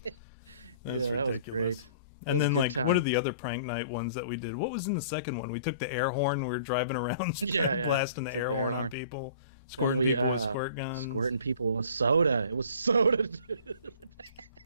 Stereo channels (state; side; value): inverted; both; correlation -0.50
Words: That's ridiculous. That was great. And then, like, what are the other prank night ones that we did? What was in the second one? We took the air horn. We were driving around blasting the air horn on people. Squirting people with squirt guns. Squirting people with soda. It was soda, dude.